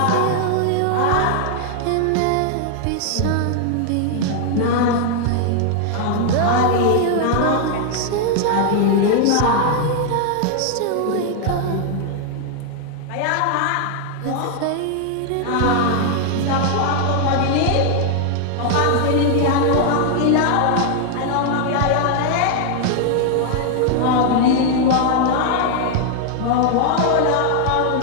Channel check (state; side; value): different; both; correlation 0.00